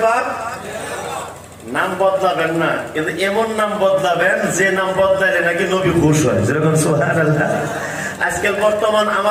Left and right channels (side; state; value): both; identical; correlation 1.00